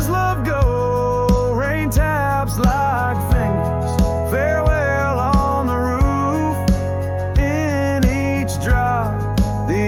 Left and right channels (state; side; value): identical; both; correlation 1.00